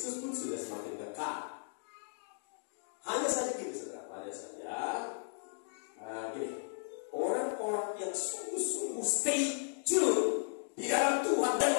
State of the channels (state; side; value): silent; right; digital silence